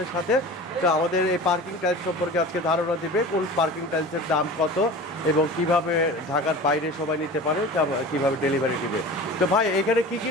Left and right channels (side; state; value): both; normal; correlation 0.36